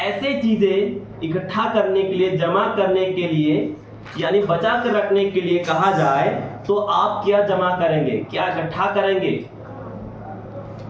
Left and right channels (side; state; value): both; identical; correlation 1.00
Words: चीजें इकट्ठा करने के लिए, जमा करने के लिए यानी बचा कर रखने के लिए कहा जाए, तो आप क्या जमा करेंगे, क्या इकट्ठा करेंगे,